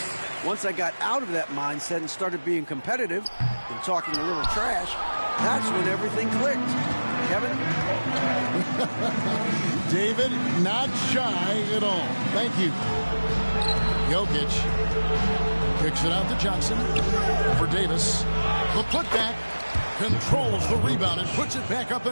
Once I got out of that mindset and started being competitive and talking a little trash, that's when everything clicked. Kevin? David, not shy at all. Thank you. Jokic kicks it out to Johnson for Davis. The putback, controls the rebound and puts it back up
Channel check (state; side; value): inverted; both; correlation -1.00